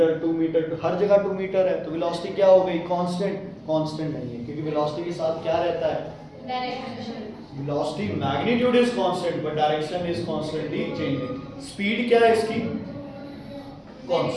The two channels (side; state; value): both; identical; correlation 1.00